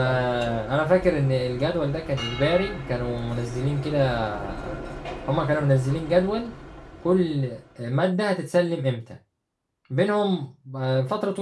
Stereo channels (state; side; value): identical; both; correlation 1.00